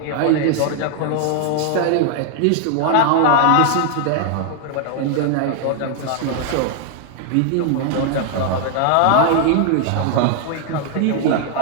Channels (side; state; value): both; different; correlation 0.00